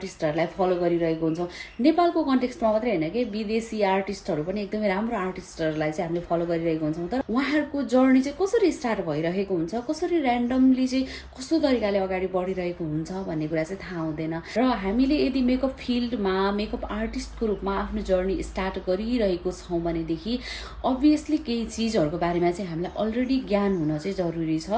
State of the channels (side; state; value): both; identical; correlation 1.00